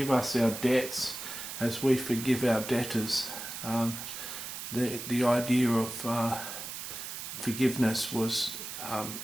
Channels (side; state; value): right; noise; hiss, 8 dB below the sound